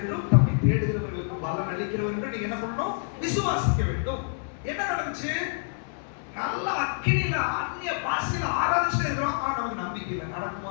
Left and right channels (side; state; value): right; silent; 60 dB below the other